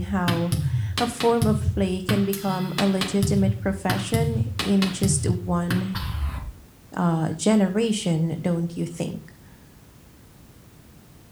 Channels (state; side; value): identical; both; correlation 1.00